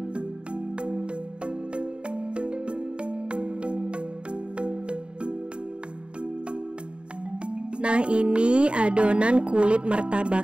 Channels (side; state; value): left; late; 0.055 ms